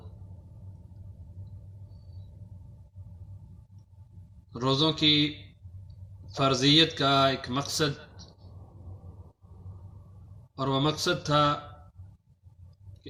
روزوں کی فرضیت کا ایک مقصد، اور وہ مقصد تھا کہ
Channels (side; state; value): both; identical; correlation 1.00